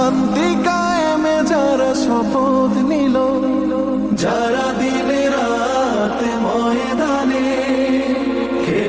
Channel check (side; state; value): right; noise; hum, 20 dB below the sound